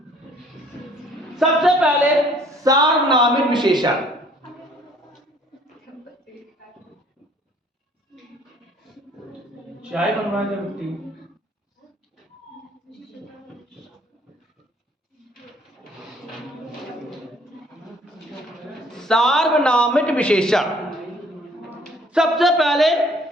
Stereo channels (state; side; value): normal; both; correlation 0.59